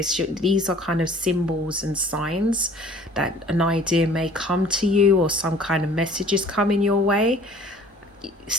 these are kind of symbols and signs that an idea may come to you, or some kind of messages coming your way,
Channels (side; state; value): both; normal; correlation 0.51